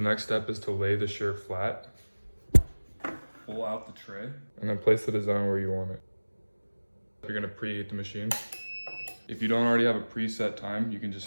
step is to lay the shirt flat. Pull out the tray and then place the design where you want it. You're gonna preheat the machine. If you don't already have a preset time, you can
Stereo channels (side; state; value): both; inverted; correlation -1.00